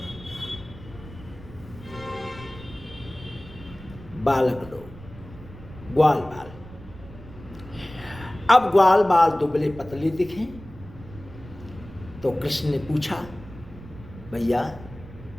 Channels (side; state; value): right; noise; rumble, 17 dB below the sound